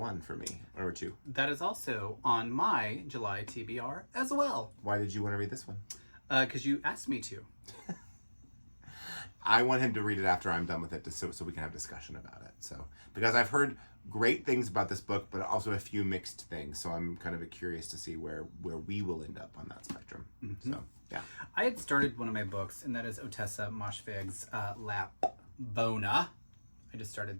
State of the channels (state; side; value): inverted; both; correlation -1.00